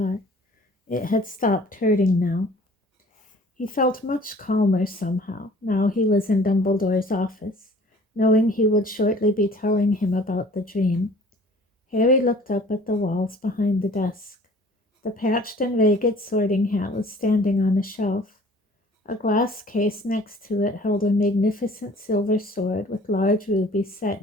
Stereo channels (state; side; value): normal; both; correlation 0.51